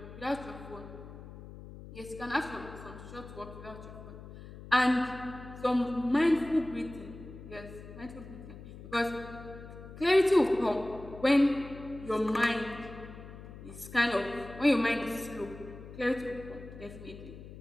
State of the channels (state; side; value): noise; left; hum, 14 dB below the sound